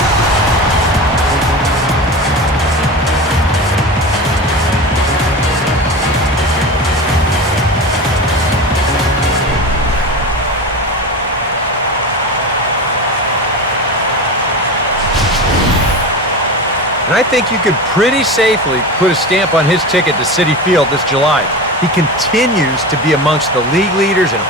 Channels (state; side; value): normal; both; correlation 0.27